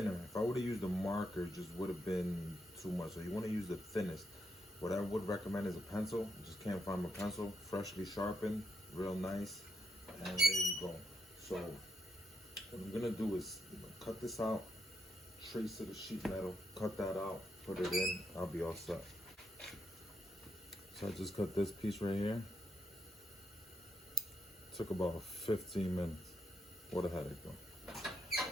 If I would have used a marker, it just would have been too much. So you want to use the thinnest. What I would recommend is a pencil. Just can't find my pencil. Freshly sharpened, real nice. And there you go. So what I'm gonna do is cut this out, trace to the sheet metal, cut that out, put it in, I'll be all set. So I just cut this piece right here. Took about 15 minutes. What a headache though.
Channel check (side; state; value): both; normal; correlation 0.80